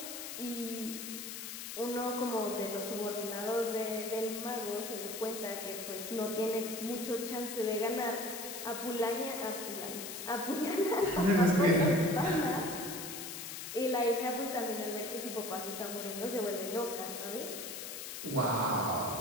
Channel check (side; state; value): left; noise; hiss, 7 dB below the sound